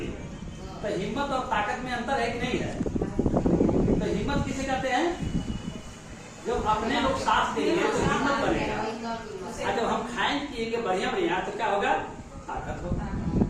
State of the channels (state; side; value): identical; both; correlation 1.00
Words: है। तो हिम्मत और ताकत में अंतर है कि नहीं है? तो हिम्मत किसे कहते हैं? जब अपने लोग साथ देंगे तो हिम्मत बनेगा। आज जब हम खाएं पिएंगे बढ़िया बढ़िया तो क्या होगा? ताकत होगा